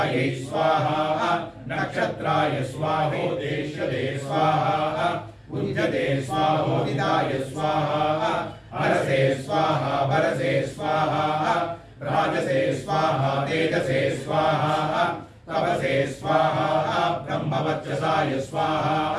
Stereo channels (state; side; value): identical; both; correlation 1.00